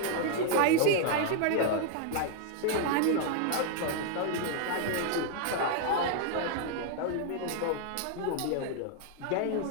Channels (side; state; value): both; different; correlation 0.00